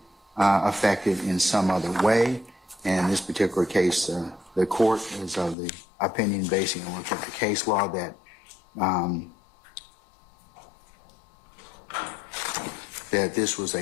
affected in some other way. And in this particular case, the court is of the opinion, basing on look at the case law, that that this was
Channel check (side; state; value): right; drops out; at 5.6 s